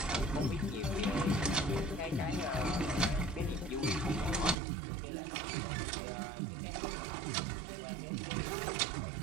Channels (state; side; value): drops out; left; at 4.5 s